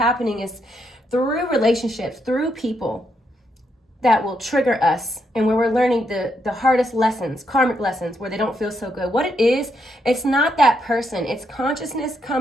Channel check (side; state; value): both; normal; correlation 0.78